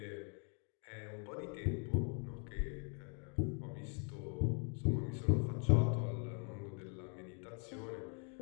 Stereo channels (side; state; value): right; quieter; 39.7 dB